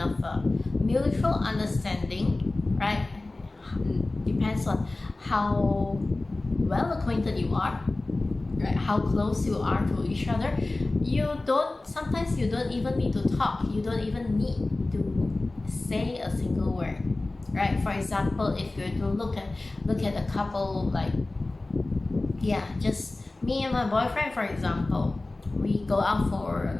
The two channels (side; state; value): right; quieter; 3.0 dB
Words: mutual understanding, right? Depends on how well acquainted you are, right? How close you are to each other. Sometimes you don't even need to talk. You don't even need to say a single word, right? For example, if you're to look at a couple, like, yeah, just me and my boyfriend, for example, we go out for